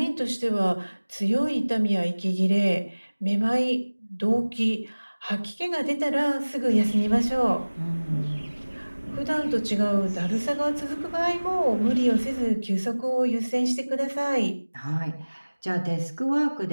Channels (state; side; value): inverted; both; correlation -1.00